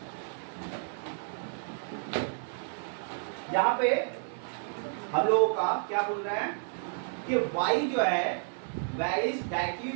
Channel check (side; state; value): left; silent; 57 dB below the other